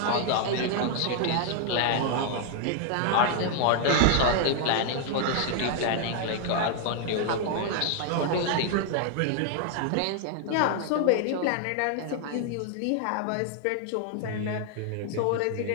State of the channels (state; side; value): different; both; correlation 0.00